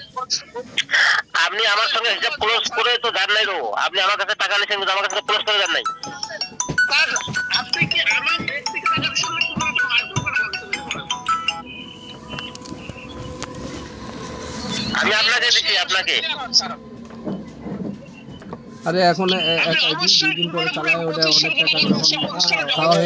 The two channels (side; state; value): both; identical; correlation 1.00